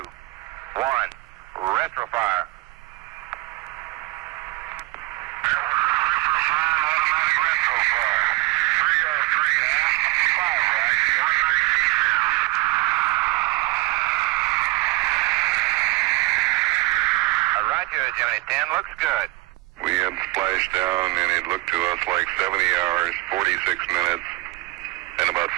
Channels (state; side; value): quieter; left; 20.2 dB